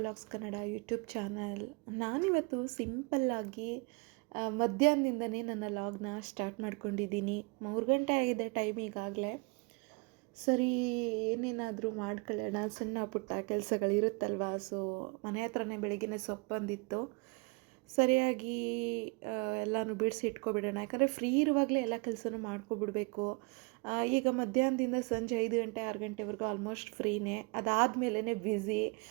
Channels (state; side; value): quieter; left; 30.0 dB